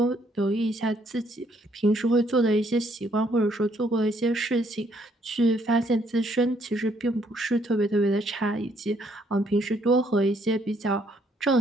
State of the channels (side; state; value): both; normal; correlation 0.69